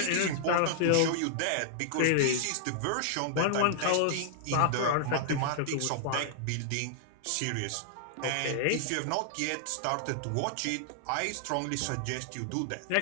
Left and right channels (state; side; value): different; both; correlation -0.01